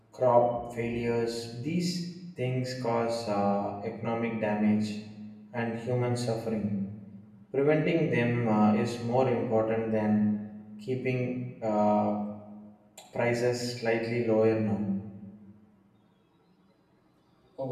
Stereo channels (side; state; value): both; identical; correlation 1.00